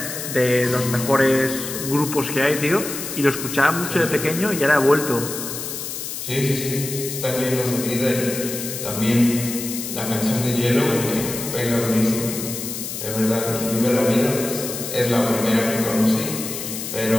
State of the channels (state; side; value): noise; left; hiss, 6 dB below the sound